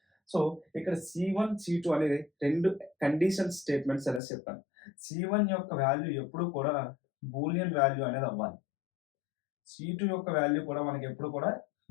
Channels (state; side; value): drops out; right; at 4.2 s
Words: సో, ఇక్కడ C1, C2 అనేది 2 కండిషన్ స్టేట్మెంట్స్ అనేసి చెప్పాను. C1 యొక్క వాల్యూ ఎప్పుడు కూడా బూలియన్ వాల్యూ అనేది అవ్వాలి. C2 యొక్క వాల్యూ కూడా మనకి ఎప్పుడు కూడా